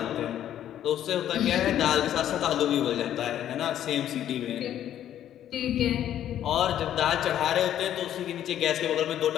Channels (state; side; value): quieter; right; 11.1 dB